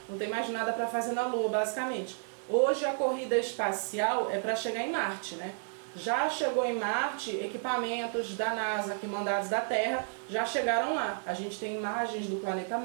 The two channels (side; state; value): left; silent; 57 dB below the other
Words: não tem mais nada para fazer na Lua, basicamente. Hoje a corrida espacial é para chegar em Marte, né? Já chegou em Marte, equipamentos da NASA que mandados da Terra já chegaram lá. A gente tem imagens do planeta